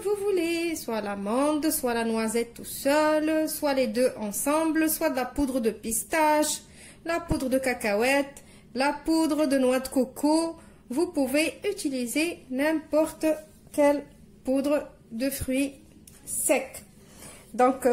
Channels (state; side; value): identical; both; correlation 1.00